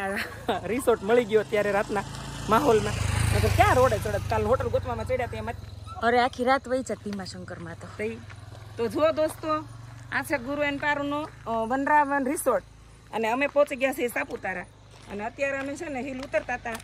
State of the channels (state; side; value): identical; both; correlation 1.00